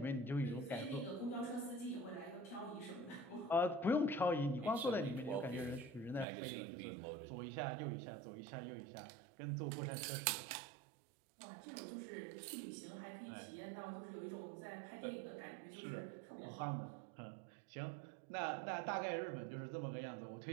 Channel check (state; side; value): drops out; left; at 6.2 s